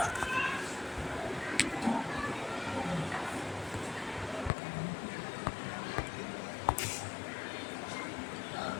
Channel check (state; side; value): drops out; right; at 4.5 s